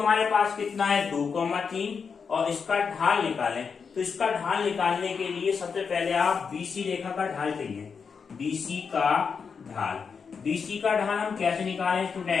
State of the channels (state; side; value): quieter; right; 5.9 dB